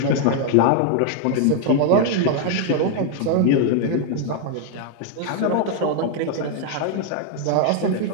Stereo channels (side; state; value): both; different; correlation 0.00